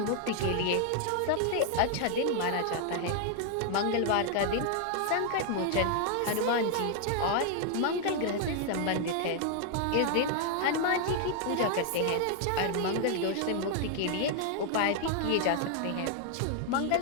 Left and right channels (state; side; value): different; both; correlation 0.00